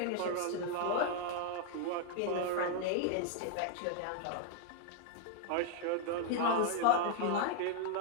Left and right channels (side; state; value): both; different; correlation 0.00